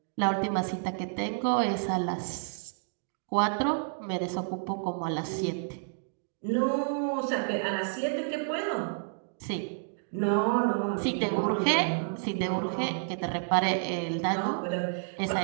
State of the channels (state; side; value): silent; left; digital silence